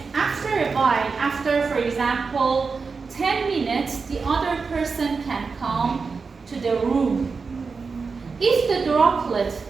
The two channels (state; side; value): quieter; left; 4.8 dB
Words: after a while, after, for example, 10 minutes, the other person can come to the room. If the droplet